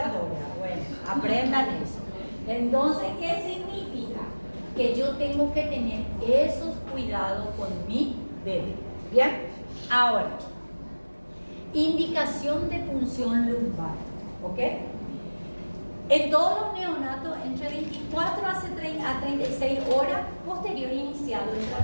Bueno, aprendan eso. Entonces, ¿qué significa? Que yo tengo que tener esos cuidados con mi bebé. ¿Bien? Ahora, indicación de punción lumbar. ¿Ok? En todos los neonatos, entre 24 a 36 horas posterior iniciado el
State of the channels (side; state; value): both; inverted; correlation -1.00